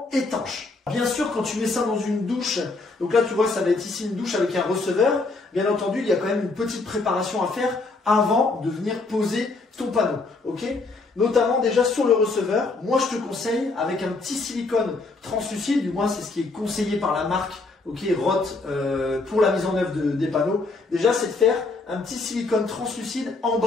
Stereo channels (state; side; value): quieter; right; 3.6 dB